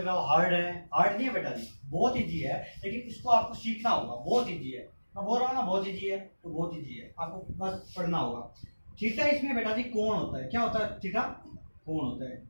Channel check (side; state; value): both; inverted; correlation -1.00